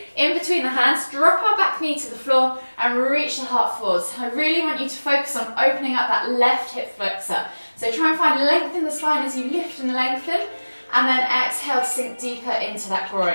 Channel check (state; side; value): inverted; both; correlation -1.00